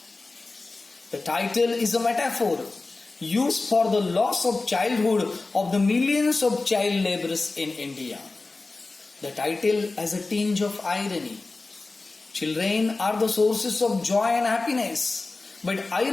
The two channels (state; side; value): quieter; right; 3.5 dB